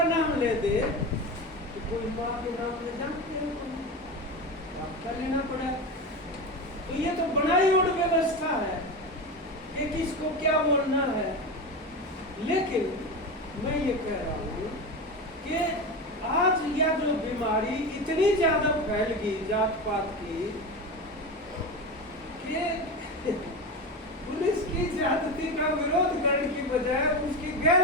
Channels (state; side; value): normal; both; correlation 0.22